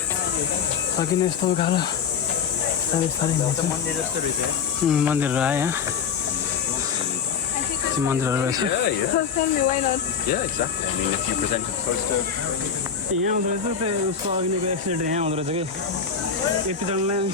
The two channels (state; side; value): quieter; right; 6.7 dB